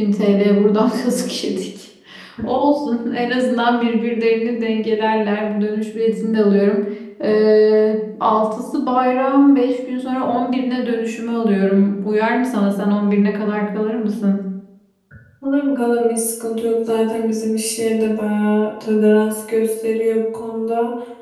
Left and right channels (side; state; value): both; identical; correlation 1.00